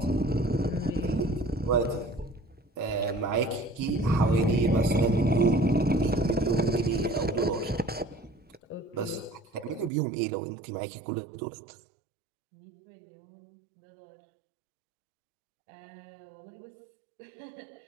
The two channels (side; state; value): left; drops out; at 9.9 s